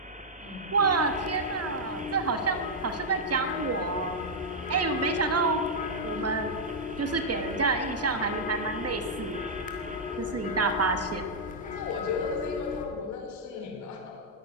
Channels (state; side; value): normal; both; correlation -0.05